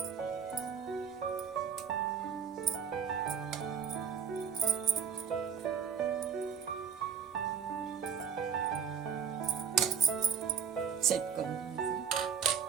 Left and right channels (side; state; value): left; quieter; 7.5 dB